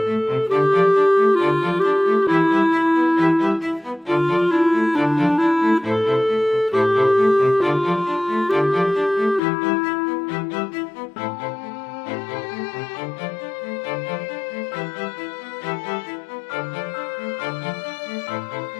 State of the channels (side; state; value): right; drops out; at 9.4 s